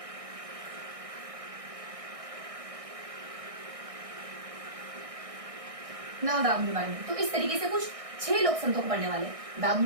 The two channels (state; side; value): late; left; 1.6 ms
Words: नवल राम के बारे में। तो इस तरीके से कुछ 6 लोक संतों को पढ़ने वाले।